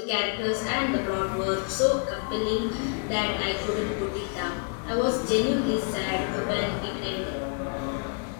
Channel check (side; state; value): right; quieter; 38.4 dB